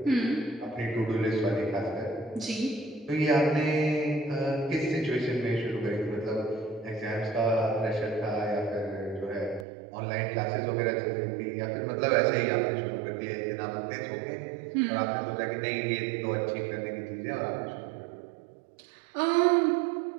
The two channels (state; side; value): drops out; left; at 9.7 s